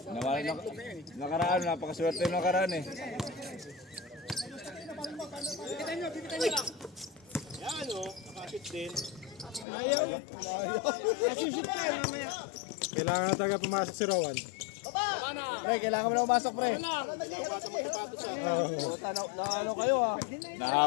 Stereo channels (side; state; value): right; drops out; at 9.7 s